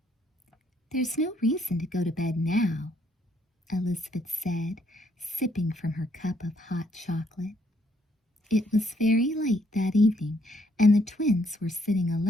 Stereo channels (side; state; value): both; normal; correlation 0.70